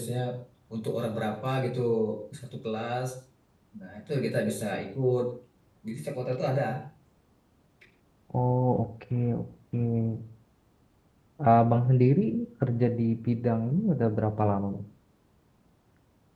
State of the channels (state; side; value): identical; both; correlation 1.00